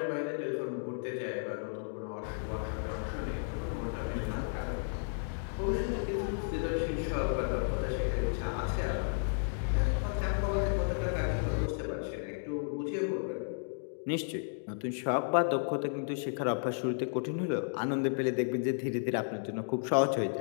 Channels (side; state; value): right; silent; digital silence